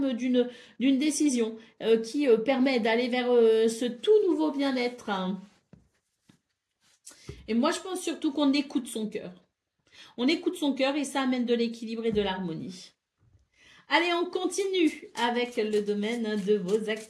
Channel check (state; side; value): identical; both; correlation 1.00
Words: d'une décision qui permet d'aller vers ce tout nouveau bien-être, hein. Et moi, je pense surtout qu'on écoute son cœur. On écoute son cœur et ça amène de l'équilibre et de l'harmonie. Allez, on continue avec le domaine de vos